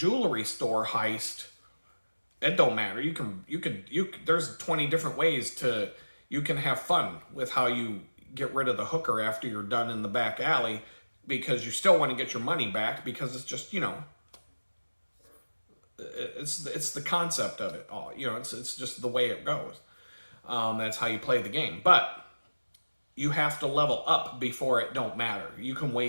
store heist, it don't matter. There's 20 different ways you can have fun with how you get rid of the hooker after you're done in the back alley, because you still want to get your money back, because it's just, it's the concept of it all. It's just the way it goes. That's how you play the game. But you have to level up before it don't matter. You can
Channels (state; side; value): inverted; both; correlation -1.00